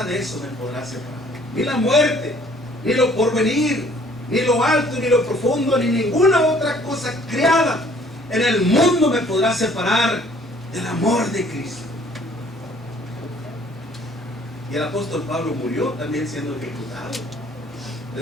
de eso me podrá separar. Ni la muerte, ni lo porvenir, ni lo alto, ni lo profundo, ni ninguna otra cosa creada en el mundo me podrá separar del amor de Cristo. Y el apóstol Pablo murió también siendo ejecutado. Le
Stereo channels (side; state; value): both; normal; correlation 0.58